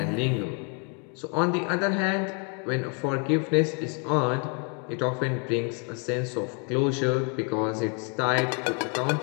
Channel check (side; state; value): right; quieter; 37.6 dB